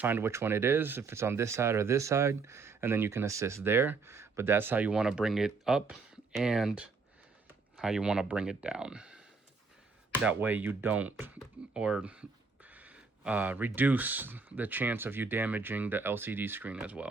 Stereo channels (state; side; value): quieter; left; 4.5 dB